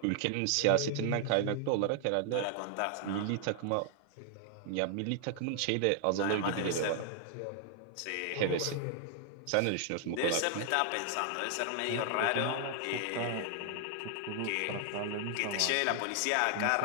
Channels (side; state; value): both; different; correlation 0.00